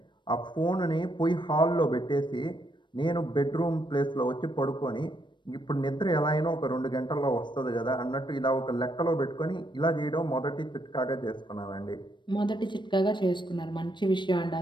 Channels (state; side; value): late; right; 0.22 ms